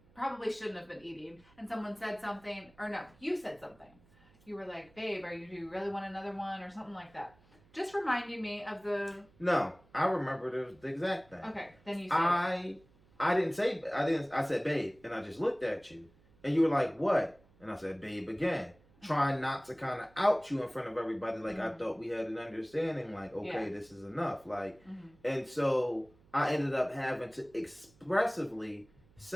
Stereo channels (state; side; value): noise; right; hum, 29 dB below the sound